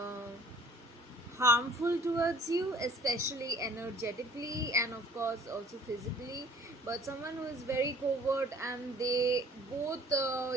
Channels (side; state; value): both; normal; correlation 0.52